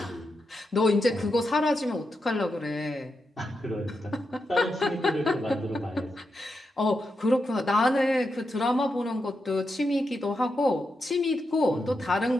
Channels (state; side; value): normal; both; correlation 0.86